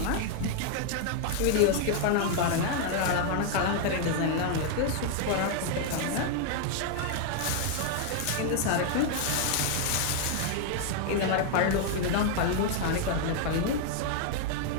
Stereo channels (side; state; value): both; different; correlation 0.00